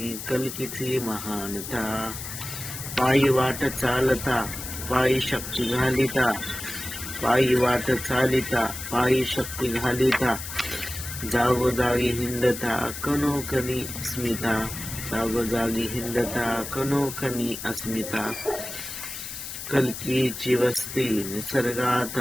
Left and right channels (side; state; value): left; noise; hiss, 8 dB below the sound